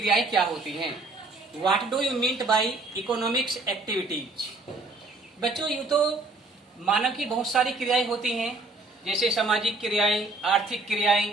क्या होती हैं। What do you mean by economics activities. बच्चों, यूँ तो मानव की बहुत सारी क्रियाएं होती हैं, जैसे सामाजिक क्रियाएं, आर्थिक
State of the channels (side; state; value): left; quieter; 3.3 dB